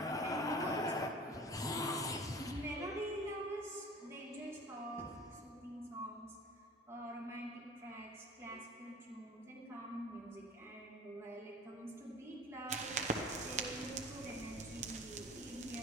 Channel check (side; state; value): both; normal; correlation 0.42